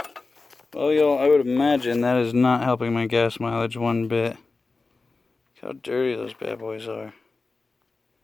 Well, y'all, I would imagine that is not helping my gas mileage one bit. Look how dirty those bad boys are.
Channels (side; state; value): right; quieter; 3.8 dB